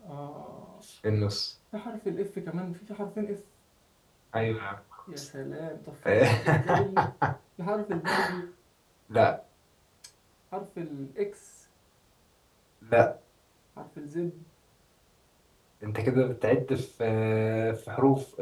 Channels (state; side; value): identical; both; correlation 1.00